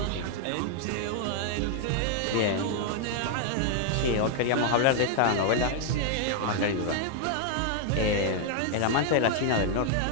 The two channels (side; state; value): both; different; correlation 0.00